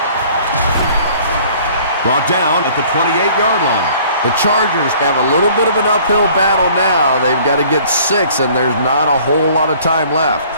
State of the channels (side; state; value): both; inverted; correlation -0.53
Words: Brought down at the 28-yard line. The Chargers have a little bit of an uphill battle now. They've got to get 6, and there's not a whole lot of time left.